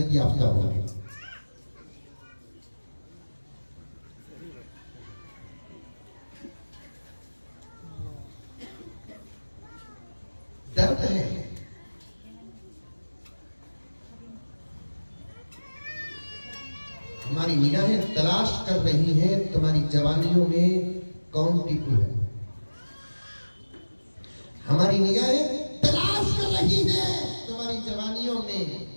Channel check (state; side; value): inverted; both; correlation -1.00